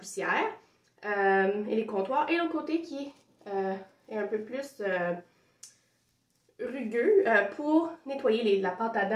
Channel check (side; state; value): both; identical; correlation 1.00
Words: et les comptoirs. Et l'autre côté qui est un peu plus rugueux pour nettoyer la pâte à